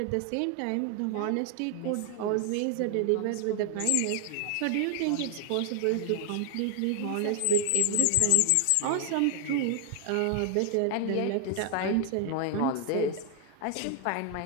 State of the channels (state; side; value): different; both; correlation 0.00